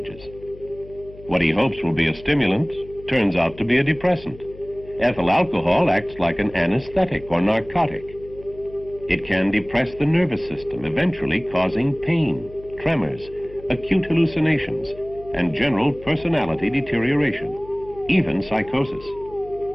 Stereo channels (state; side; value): noise; left; hum, 19 dB below the sound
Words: What he hopes will be a stimulant turns out to be a depressant. Ethyl alcohol acts like an anesthetic or narcotic. It can depress the nervous system, eventually causing pain, tremors, acute hallucinations, and general personality deterioration, even psychosis.